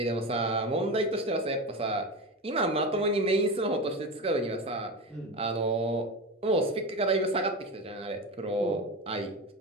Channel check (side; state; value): both; normal; correlation 0.23